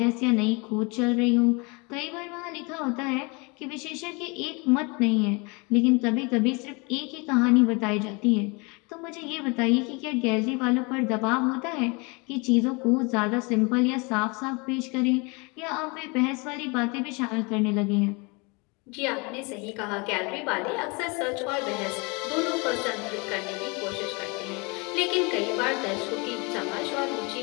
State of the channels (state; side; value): quieter; right; 29.0 dB